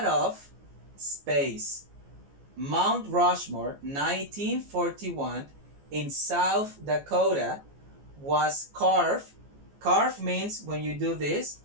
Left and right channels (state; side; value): late; left; 14 ms